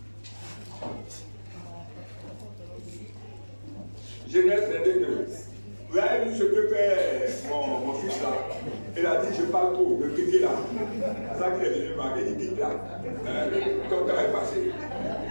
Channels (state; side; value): inverted; both; correlation -1.00